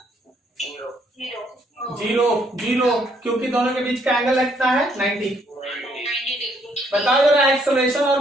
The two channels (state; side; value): normal; both; correlation 0.69